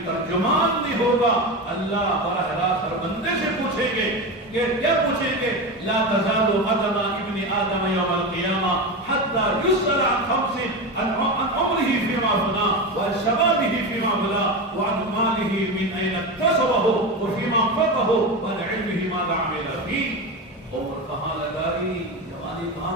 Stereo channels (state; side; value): normal; both; correlation 0.21